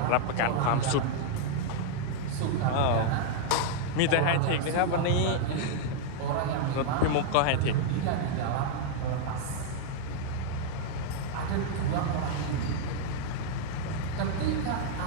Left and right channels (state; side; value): different; both; correlation -0.01